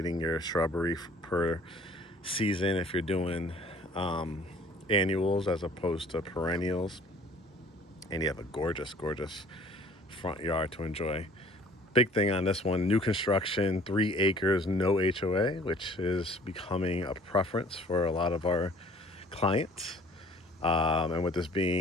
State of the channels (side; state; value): both; normal; correlation 0.53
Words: your shrubbery per season, if you're doing annuals as opposed to perennials, and you have a gorgeous front yard to enjoy. Big thing on this one, new construction, 3 acres, no HOA, which is becoming a preference for a lot of our clients. And with this